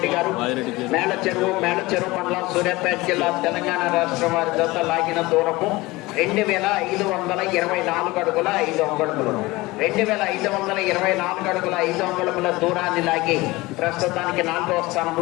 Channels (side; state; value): right; quieter; 20.9 dB